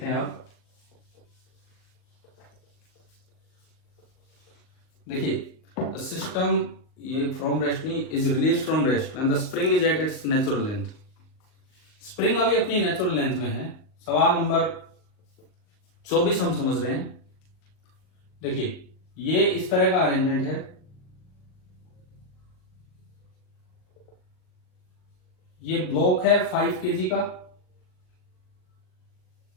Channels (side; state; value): right; late; 38 ms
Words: हैं। अब देखिए सिस्टम ये फ्रॉम रेस्ट नहीं is release from rest when the spring is at its natural length, spring अभी अपनी नेचुरल लेंथ में है। सवाल नंबर 24 हम समझ रहे हैं। देखिए ये इस तरह का अरेंजमेंट है, ये ब्लॉक है 5 kg का